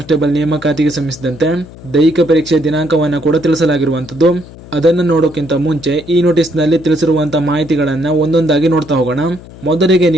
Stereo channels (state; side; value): noise; left; hum, 18 dB below the sound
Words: ನೇಮಕಾತಿಗೆ ಸಂಬಂಧಿಸಿದಂತೆ ದೈಹಿಕ ಪರೀಕ್ಷೆ ದಿನಾಂಕವನ್ನ ಕೂಡ ತಿಳಿಸಲಾಗಿರುವಂತದ್ದು. ಅದನ್ನು ನೋಡೋಕ್ಕಿಂತ ಮುಂಚೆ ಈ ನೋಟಿಸ್ ನಲ್ಲಿ ತಿಳಿಸಿರುವಂತಹ ಮಾಹಿತಿಗಳನ್ನ ಒಂದೊಂದಾಗಿ ನೋಡ್ತಾ ಹೋಗೋಣ. ಮೊದಲಿಗೆ